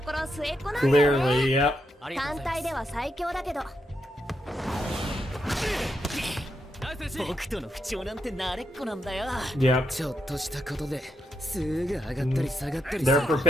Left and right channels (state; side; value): normal; both; correlation 0.82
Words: ころ末っ子なんだよね。 Clearly, yep. 単体では最強だけど。僕との不調なんて慣れっこなんだよ。 Yep. ちょっとしたことですぐ上がったり下がったり。 They're